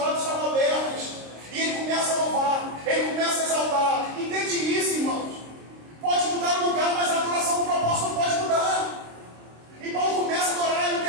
estavam abertos. E ele começa a louvar, ele começa a exaltar. Entende isso, irmãos? Pode mudar o lugar, mas a adoração do propósito não pode mudar. E Paulo começa a adorar e o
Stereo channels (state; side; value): late; left; 26 ms